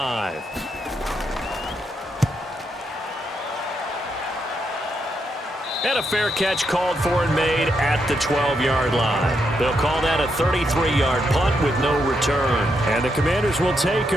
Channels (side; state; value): both; normal; correlation 0.80